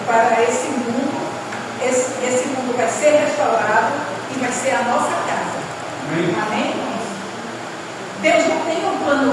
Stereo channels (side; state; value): both; identical; correlation 1.00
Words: esse mundo. Esse mundo vai ser restaurado e vai ser a nossa casa. Amém? Deus não tem um